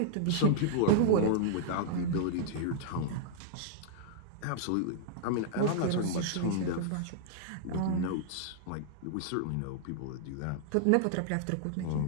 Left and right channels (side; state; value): both; different; correlation -0.01